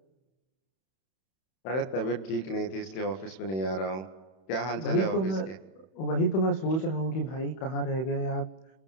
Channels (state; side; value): late; right; 31 ms